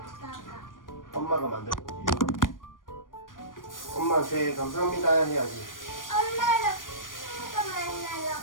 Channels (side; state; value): right; late; 0.90 ms